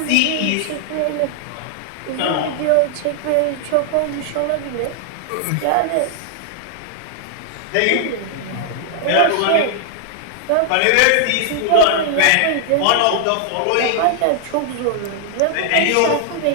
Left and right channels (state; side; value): different; both; correlation 0.00